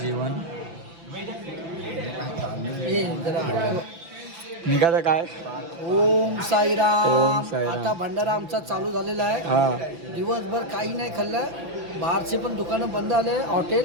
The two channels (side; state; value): left; late; 6.0 ms